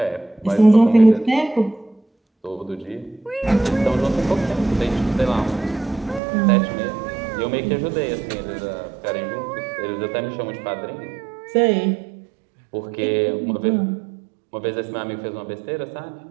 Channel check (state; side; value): drops out; left; at 6.2 s